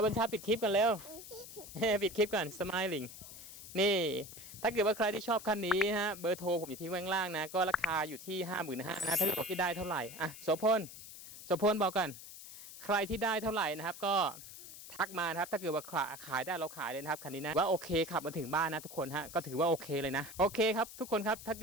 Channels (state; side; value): noise; left; hiss, 14 dB below the sound